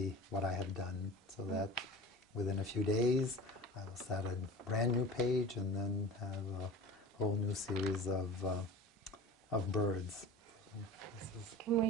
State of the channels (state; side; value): normal; both; correlation 0.35